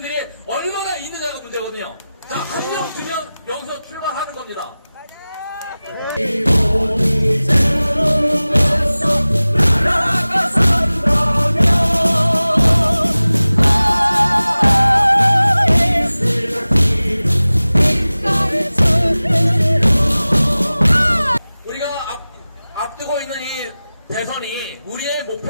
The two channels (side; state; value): both; inverted; correlation -0.97